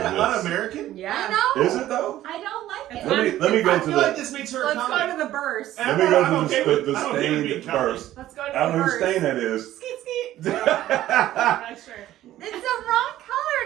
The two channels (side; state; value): left; quieter; 13.8 dB